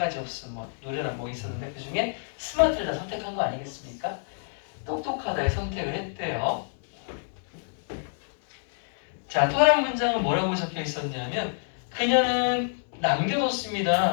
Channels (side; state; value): right; silent; digital silence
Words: 없음, 뭐 노래나 뭐 있었는데 그 중에 스마트를 다 선택한 거 아니겠습니까? 똑똑하다에 선택을 했대요. 자, 또 다른 문장은 뭐라고 적혀 있었냐면 그녀는